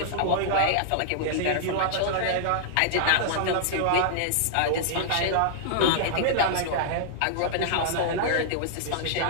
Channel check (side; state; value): both; different; correlation -0.01